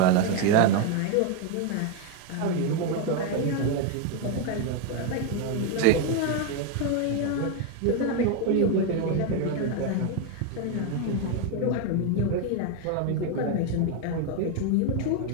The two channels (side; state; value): both; different; correlation 0.01